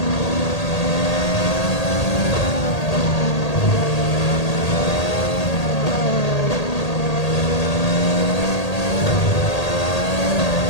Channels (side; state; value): right; late; 1.8 ms